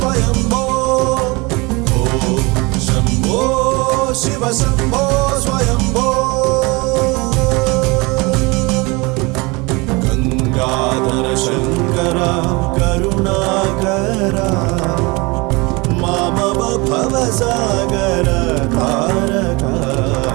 शंभो शिव शंभो स्वयंभो गंगाधर शंकर करुणाकर मामव भवसागर तारक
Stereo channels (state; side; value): quieter; left; 25.9 dB